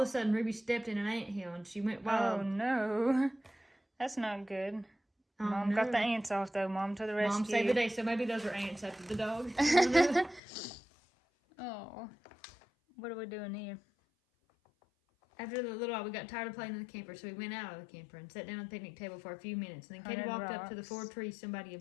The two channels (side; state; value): right; drops out; at 10.4 s